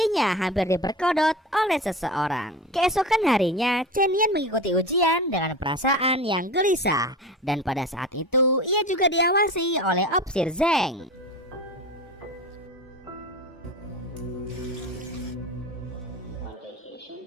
hampir diperkodok oleh seseorang. Keesokan harinya, Chen Yan mengikuti ujian dengan perasaan yang gelisah dan pada saat itu ia juga diawasi oleh Opsir Zeng.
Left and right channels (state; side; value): normal; both; correlation 0.30